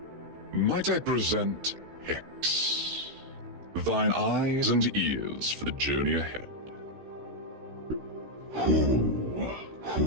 Might I present Hex, thine eyes and ears for the journey ahead?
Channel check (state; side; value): late; left; 16 ms